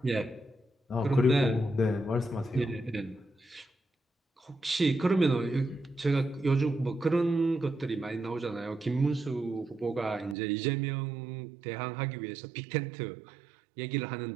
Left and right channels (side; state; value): left; drops out; at 10.4 s